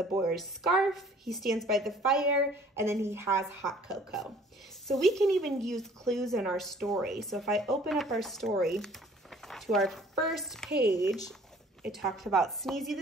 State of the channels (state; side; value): normal; both; correlation 0.54